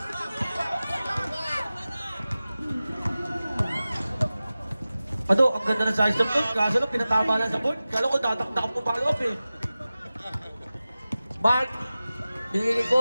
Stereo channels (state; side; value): inverted; both; correlation -0.96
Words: Ado, ang ganda ng size ng board. Kaso lang, pinatama lang sa board. Kala ko, tataktak mo follow up eh. Mark. Binigay kay